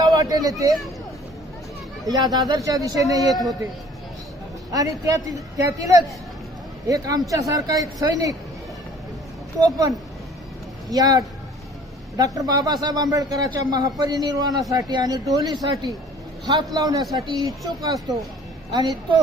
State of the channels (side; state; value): both; normal; correlation 0.52